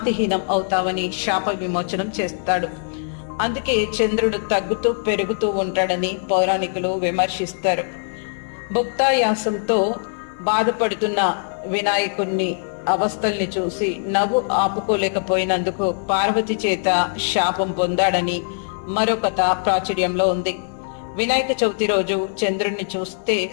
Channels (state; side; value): silent; right; 65 dB below the other